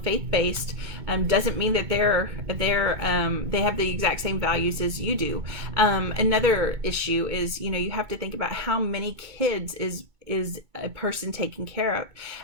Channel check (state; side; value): late; left; 2.2 ms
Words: faith-based doesn't mean that they have the exact same values as you do. Another issue is, you have to think about how many kids is a person taken care